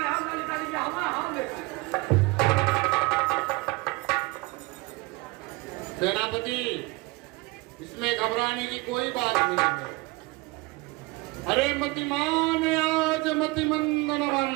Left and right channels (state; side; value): quieter; left; 23.2 dB